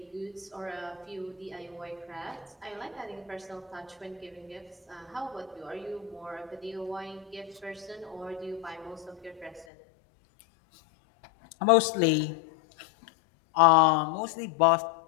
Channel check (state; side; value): drops out; right; at 9.7 s